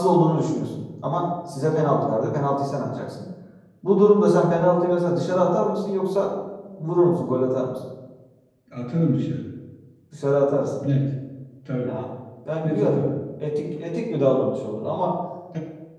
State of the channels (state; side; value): identical; both; correlation 1.00